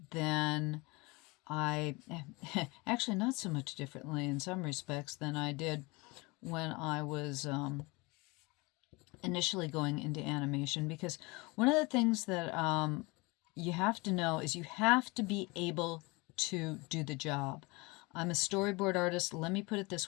than actually not so much differently in some respects than I did when I was initially going into animation, because one of the things that you have to know is you have to be able to do the job. I'm a storyboard artist. Let me put it this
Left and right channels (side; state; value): right; quieter; 25.4 dB